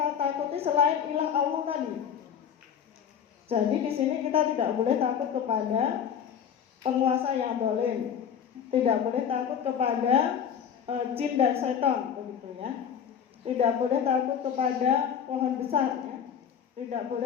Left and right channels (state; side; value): quieter; right; 8.1 dB